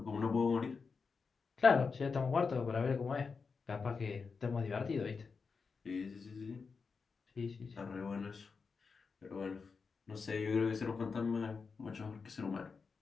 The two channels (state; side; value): quieter; right; 5.1 dB